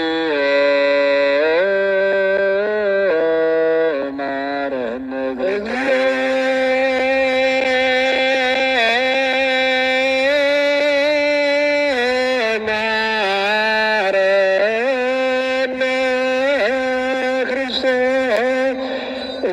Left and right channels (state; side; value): identical; both; correlation 1.00